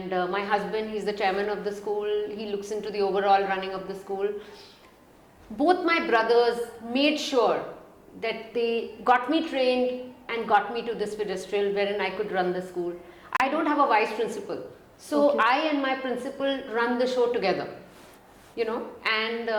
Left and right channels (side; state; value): both; identical; correlation 1.00